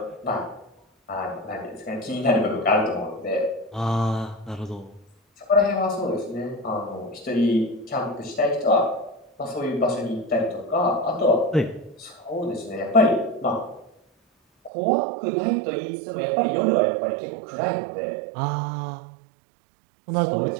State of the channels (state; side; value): drops out; left; at 14.7 s